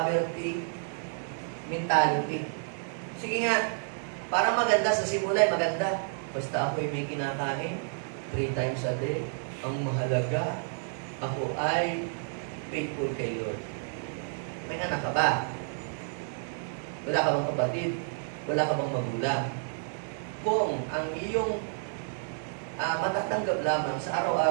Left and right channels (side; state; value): left; silent; 58 dB below the other